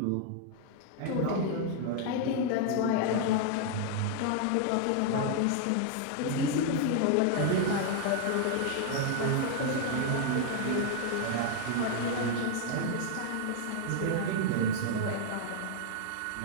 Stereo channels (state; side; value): different; both; correlation 0.00